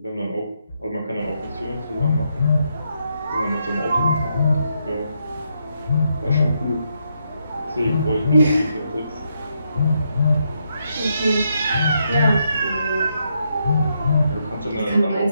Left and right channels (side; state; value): both; inverted; correlation -0.79